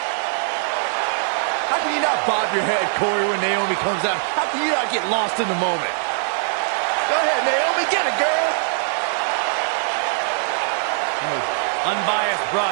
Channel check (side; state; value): left; silent; 55 dB below the other